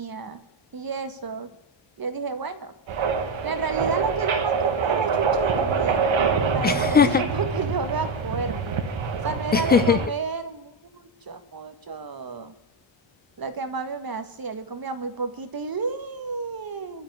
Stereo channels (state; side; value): normal; both; correlation 0.08